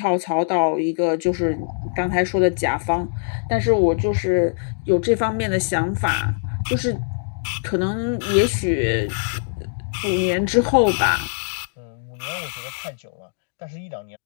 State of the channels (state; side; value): silent; right; digital silence